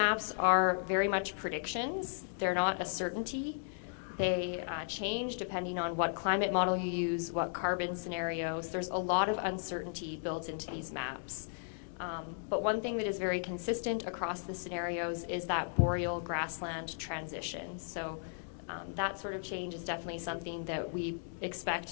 are very much predictions. They're not a certainty. They change depending on what climate model you use, what carbon scenarios. There's a lot of uncertainty built into these maps. But one thing that is very consistent across the scenarios is that boreal grassland transition. So that sort of change is definitely something that we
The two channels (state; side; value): silent; right; digital silence